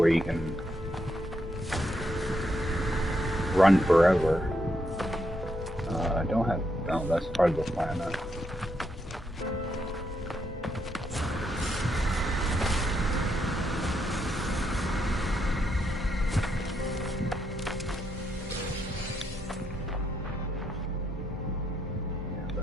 you can run forever. I don't have. No, that's part of the planet.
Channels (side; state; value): both; normal; correlation 0.79